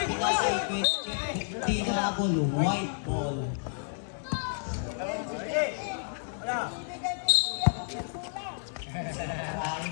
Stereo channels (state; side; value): silent; right; digital silence